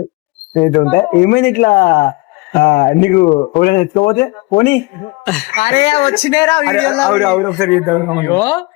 ఏమైంది ఇట్లా నీకు ఎత్తుకోపోతే పోనీ వచ్చినారా ఒకసారి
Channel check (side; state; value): right; quieter; 24.4 dB